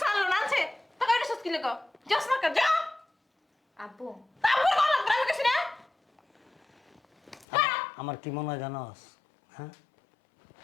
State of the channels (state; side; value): drops out; right; at 7.5 s